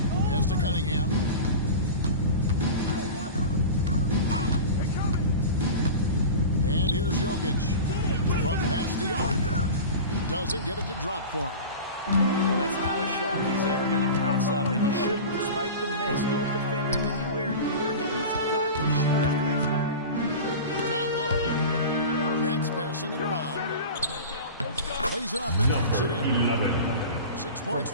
to Cunningham. And here's Jokic. From past the arc. Doesn't get it to drop for him. Well, that's not a shot he's ever going to pass up, and he shouldn't. Despite the miss, no defender anywhere near him. He's got to shoot that. Down low. Nets passing it around. Lays it up and takes it in. 11. 6 points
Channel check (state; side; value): inverted; both; correlation -0.31